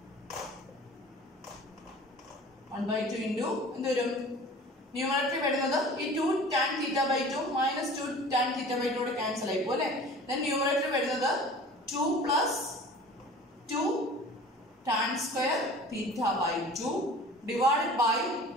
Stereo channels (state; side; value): normal; both; correlation 0.43